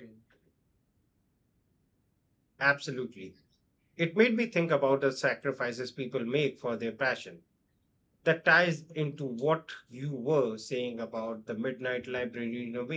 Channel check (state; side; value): identical; both; correlation 1.00